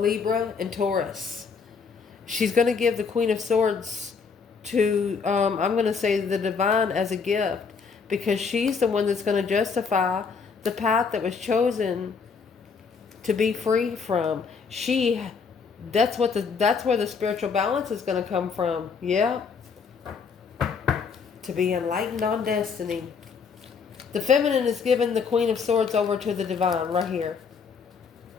and Taurus. She's going to give the Queen of Swords to, I'm going to say the divine as a gift, because she's the one that's going to justify the path that was chosen to be free from. That's where the spiritual balance is going to come from. Yeah. To be enlightened on destiny. The feminine is giving the Queen of Swords over to the divine right here.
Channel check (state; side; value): quieter; right; 5.6 dB